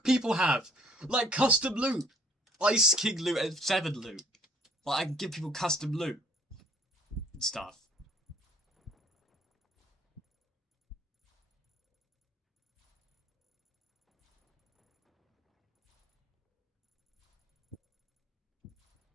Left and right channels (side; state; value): both; normal; correlation 0.59